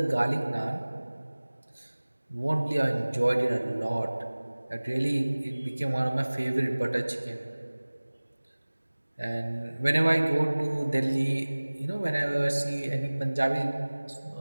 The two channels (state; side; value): inverted; both; correlation -1.00